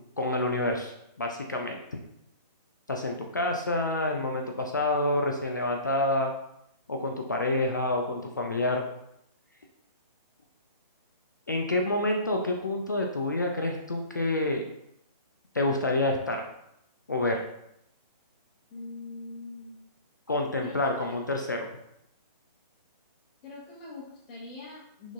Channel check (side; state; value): both; inverted; correlation -0.42